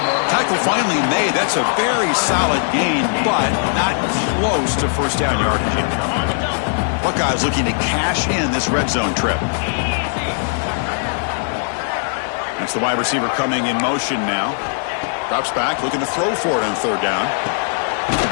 Tackle finally made. That's a very solid gain, but not close to first down yardage. Buckeyes looking to cash in this red zone trip. That's the wide receiver coming in motion now. Drops back, looking to throw for it on third down.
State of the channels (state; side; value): silent; right; 67 dB below the other